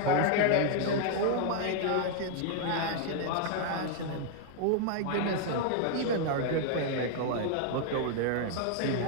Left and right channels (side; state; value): both; different; correlation 0.00